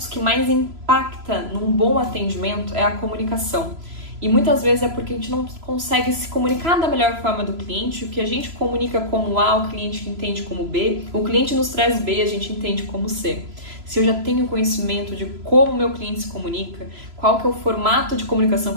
que mais impacta num bom atendimento é a comunicação. E muitas vezes é porque a gente não consegue se comunicar da melhor forma do cliente. O que a gente comunica como A, o cliente entende como B. O cliente nos traz B, a gente entende como C. Se eu já tenho conhecimento de como o meu cliente se comunica, qual que é o formato de comunicação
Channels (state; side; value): late; left; 3.0 ms